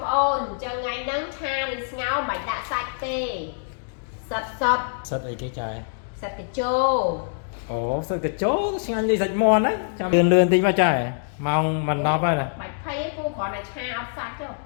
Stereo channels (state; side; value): silent; right; digital silence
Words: ôn cho ngày nắng tha đi ngáo bạch đã sạch tê sạch sạch sạch ấy cái chai sạch cái chô ồ sạch cái chỗ xin ăn gì sạch mòn đấy lươn lươn tí vào chai mong mình nó vậy nè bạch thấy pú còn là cha sạch chứ